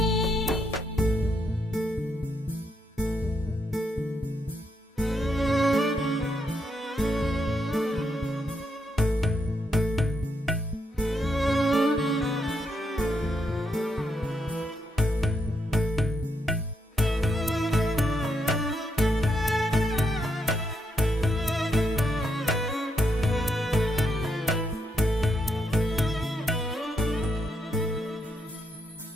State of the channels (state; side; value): normal; both; correlation 0.79